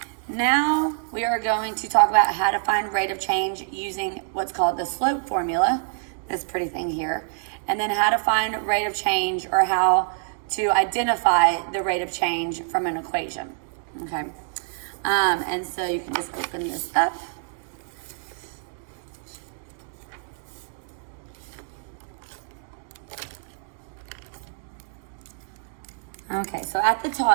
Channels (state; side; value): silent; left; digital silence